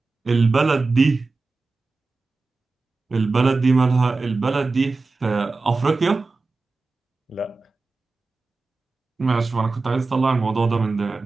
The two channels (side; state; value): left; quieter; 3.8 dB